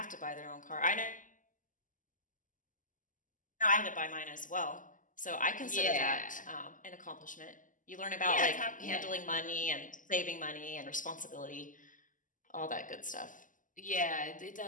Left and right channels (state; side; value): late; right; 0.38 ms